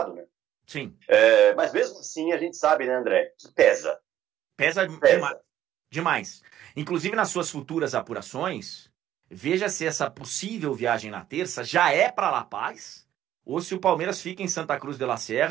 né? Sim. Mas mesmo assim a gente sabe, né, André, que pesa. Pesa. Demais. Inclusive nas suas futuras apurações, veja se essa possível viagem na terça já é para La Paz ou se o Palmeiras fica em Santa Cruz de la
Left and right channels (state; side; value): quieter; left; 12.0 dB